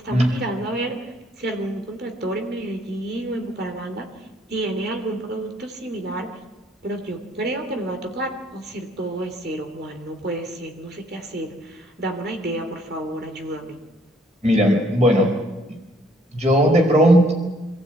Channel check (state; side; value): normal; both; correlation 0.64